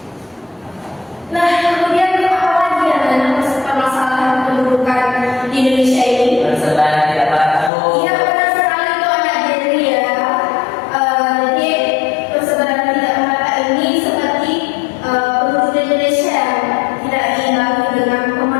Nah, kemudian apa lagi yang ada permasalahan pendudukan di Indonesia ini? Persebaran tidak merata, Bu. Iya, benar sekali tuh anak Jerry ya. Jadi persebaran tidak merata ini seperti penduduk Indonesia tidak diimbangi dengan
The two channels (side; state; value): right; drops out; at 7.7 s